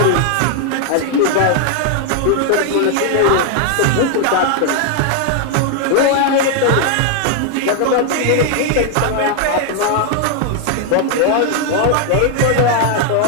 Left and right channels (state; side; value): different; both; correlation 0.00